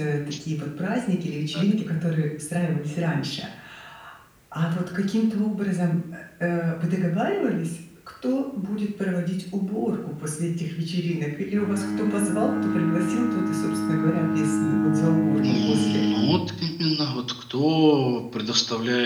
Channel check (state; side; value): identical; both; correlation 1.00